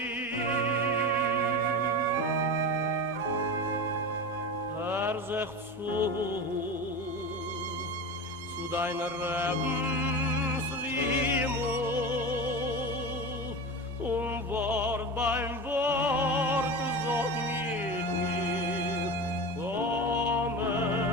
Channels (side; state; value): both; normal; correlation 0.27